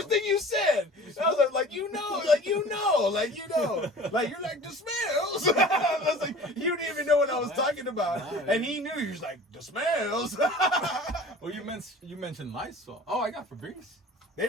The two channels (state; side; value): normal; both; correlation 0.43